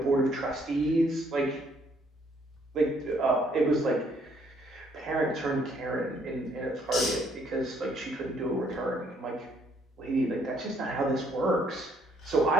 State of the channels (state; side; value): normal; both; correlation 0.67